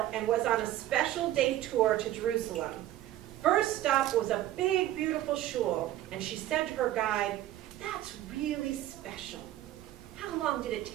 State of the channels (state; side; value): quieter; left; 13.6 dB